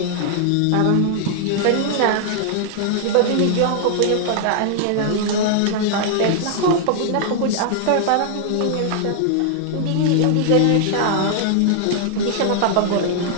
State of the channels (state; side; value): different; both; correlation -0.01